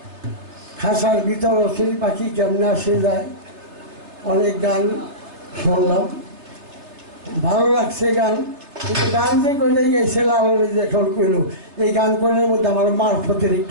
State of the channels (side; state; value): left; late; 3.3 ms